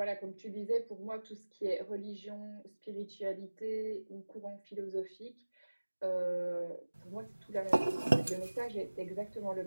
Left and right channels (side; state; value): both; inverted; correlation -1.00